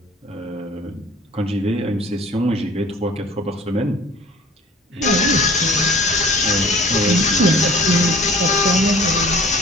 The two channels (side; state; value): both; normal; correlation 0.49